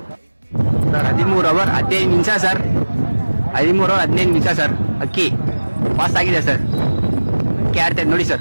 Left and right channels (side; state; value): both; inverted; correlation -1.00